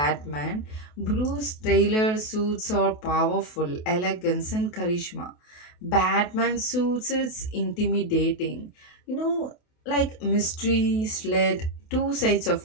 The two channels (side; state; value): right; late; 28 ms